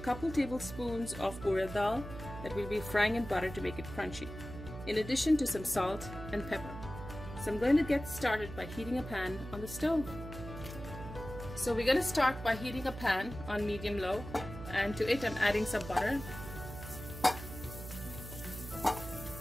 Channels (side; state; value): right; noise; hum, 11 dB below the sound